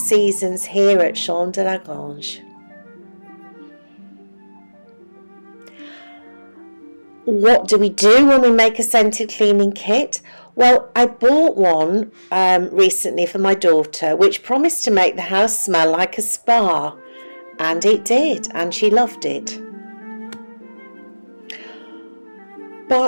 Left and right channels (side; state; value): both; inverted; correlation -1.00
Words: here at Champ de la Grange. What do we do when we make a scented cleaning kit? Well, I bought one recently for my daughter, which promised to make the house smell like a spa, and it did, and she loved it.